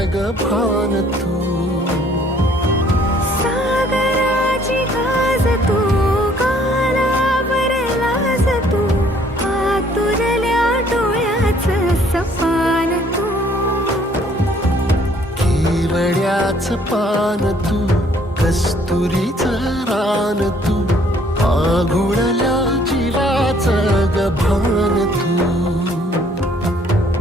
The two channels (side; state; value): both; normal; correlation 0.61